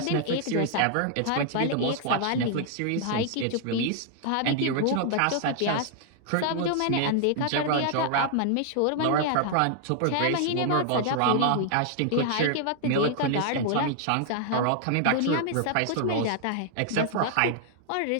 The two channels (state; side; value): different; both; correlation 0.00